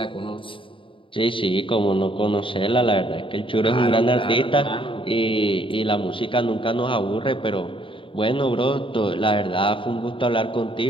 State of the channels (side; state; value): right; late; 0.25 ms